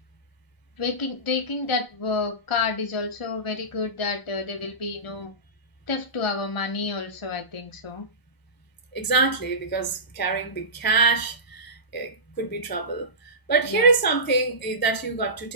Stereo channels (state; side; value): late; right; 1.0 ms